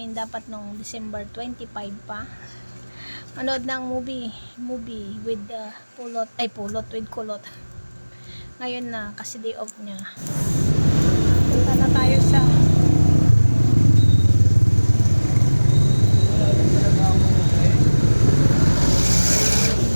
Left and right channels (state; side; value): inverted; both; correlation -1.00